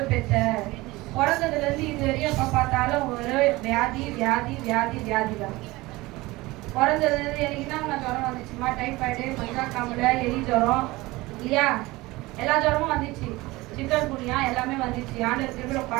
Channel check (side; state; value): left; quieter; 20.6 dB